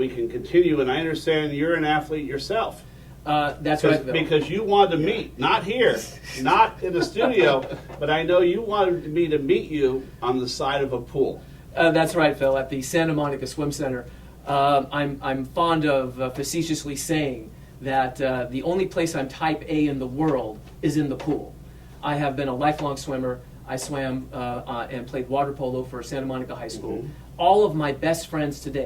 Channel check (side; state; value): both; identical; correlation 1.00